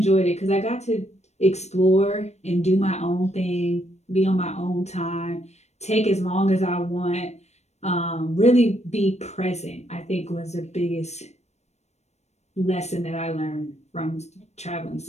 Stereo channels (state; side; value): late; right; 0.32 ms